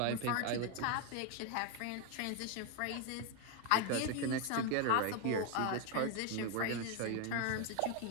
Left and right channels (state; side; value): different; both; correlation 0.01